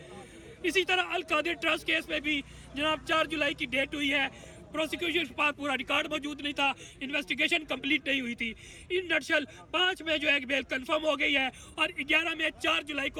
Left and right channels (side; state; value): both; identical; correlation 1.00